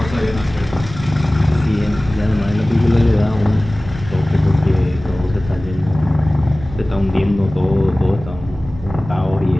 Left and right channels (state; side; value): noise; right; rumble, 14 dB below the sound